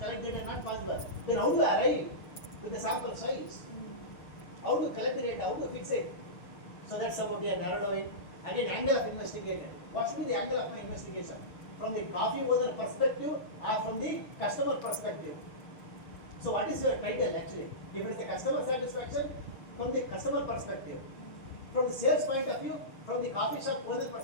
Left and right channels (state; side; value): late; right; 6.9 ms